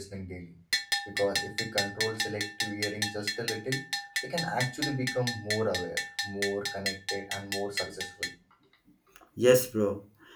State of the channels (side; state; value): both; identical; correlation 1.00